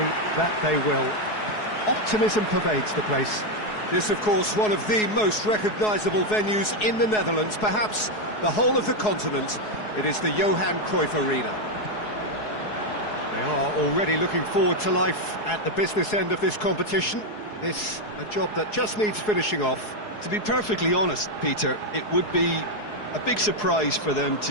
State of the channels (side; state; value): right; late; 4.7 ms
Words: that they will. Optimism pervades the place. This, of course, one of the most recognisable venues in the Netherlands, perhaps the whole of the continent. It is the Johan Cruyff Arena. They are already looking forward to life at the business end of this competition. This, a job that just needs finishing off. To be perfectly honest, Peter, it would be a big surprise for them